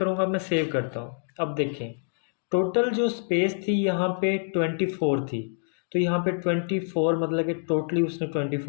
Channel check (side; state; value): right; silent; digital silence